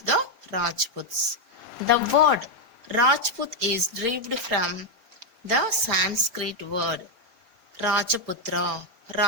the Rajputs. The word Rajput is derived from the Sanskrit word Rajaputra.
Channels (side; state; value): left; late; 4.4 ms